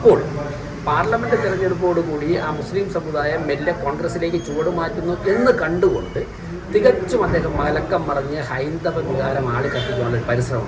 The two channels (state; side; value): identical; both; correlation 1.00